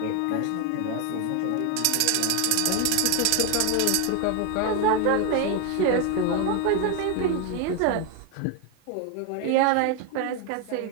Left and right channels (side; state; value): both; different; correlation 0.01